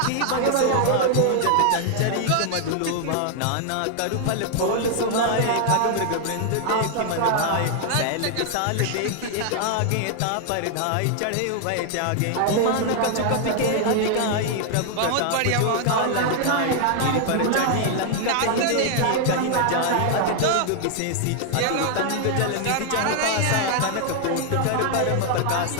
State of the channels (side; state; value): both; different; correlation 0.00